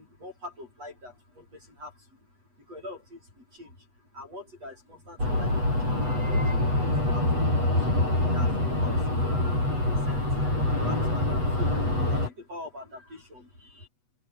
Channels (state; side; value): late; left; 8.1 ms